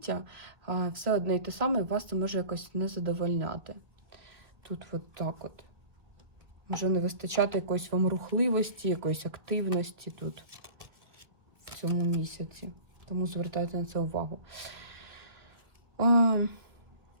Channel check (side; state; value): left; late; 1.7 ms